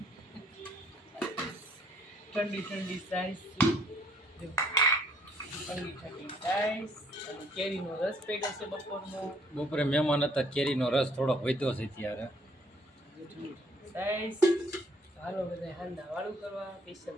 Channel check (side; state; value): both; normal; correlation 0.64